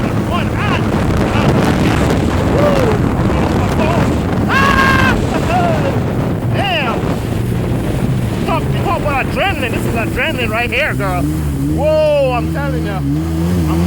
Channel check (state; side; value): identical; both; correlation 1.00